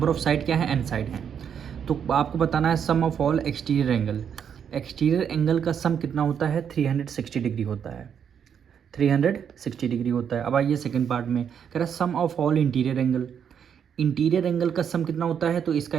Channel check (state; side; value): quieter; left; 7.9 dB